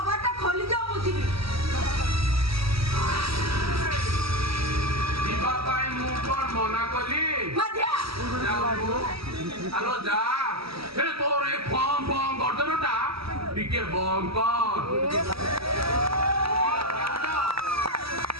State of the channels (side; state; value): left; late; 0.76 ms